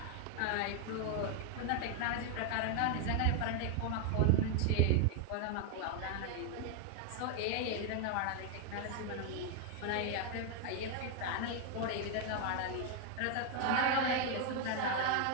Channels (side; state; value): both; different; correlation 0.00